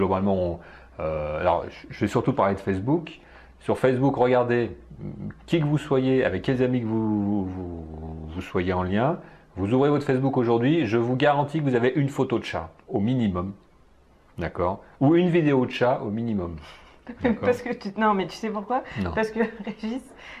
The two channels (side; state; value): both; identical; correlation 1.00